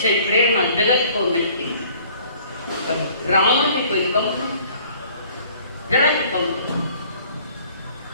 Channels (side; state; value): both; inverted; correlation -0.55